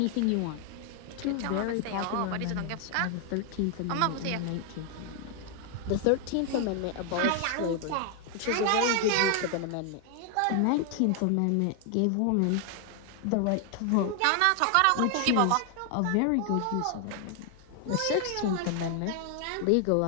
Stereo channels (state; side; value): different; both; correlation 0.00